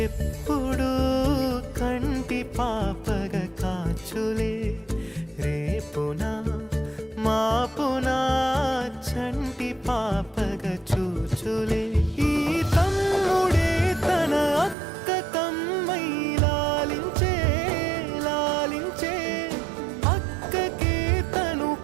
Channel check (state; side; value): drops out; left; at 14.8 s